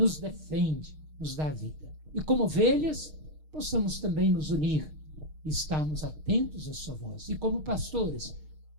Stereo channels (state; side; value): late; left; 6.5 ms